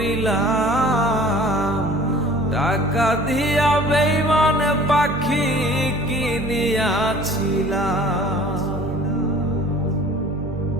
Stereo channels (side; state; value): right; noise; hum, 9 dB below the sound